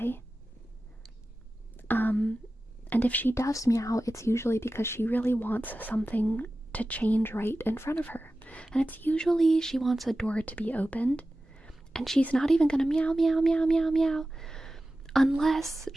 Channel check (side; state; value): both; normal; correlation 0.95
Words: And if she does meow, it's usually because she really wants something to change right in front of her. And it's usually she wants a door to be opened. And she's not even gonna meow, meow, meow, meow, meow. Unless